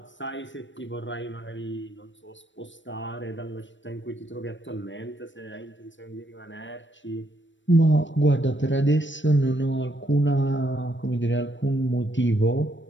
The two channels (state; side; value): late; right; 0.54 ms